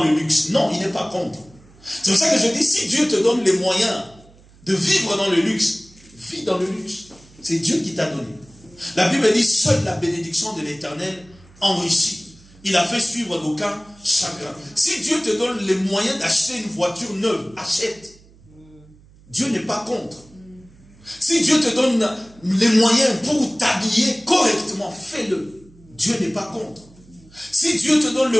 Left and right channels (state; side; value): noise; right; hum, 26 dB below the sound